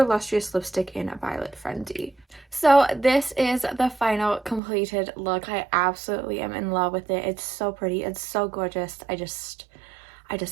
Lustrous Lipstick in Violet Frenzy. So this is the final completed look. I absolutely am in love with it. It's so pretty. It's so gorgeous. I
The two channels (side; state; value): left; drops out; at 4.6 s